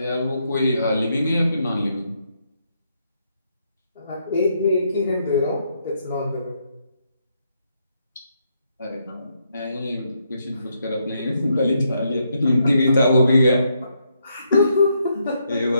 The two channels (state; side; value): inverted; both; correlation -0.77